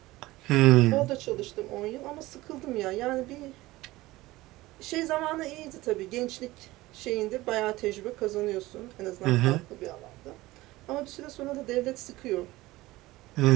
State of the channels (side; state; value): left; quieter; 18.6 dB